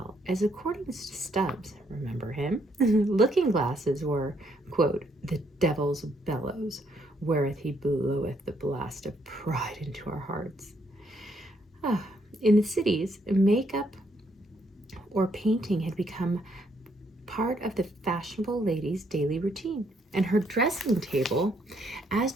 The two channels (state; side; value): normal; both; correlation 0.72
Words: as, according to Stubbs, remember him, looking glasses were, quote, the devil's bellows, wherewith he bloweth the blast of pride into our hearts. In the cities, makeup or painting had become part of the fashionable lady's daily routine, and her dressing table, as